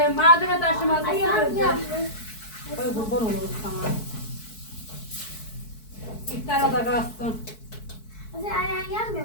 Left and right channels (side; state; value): right; late; 4.6 ms